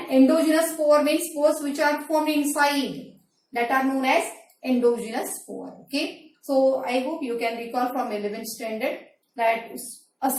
endogenous spore means spores which are formed inside, that are known as endogenous spore, okay? So I hope you can recall from 11th standard that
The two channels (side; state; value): both; identical; correlation 1.00